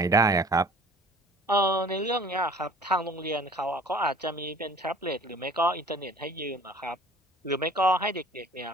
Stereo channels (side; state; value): both; normal; correlation 0.48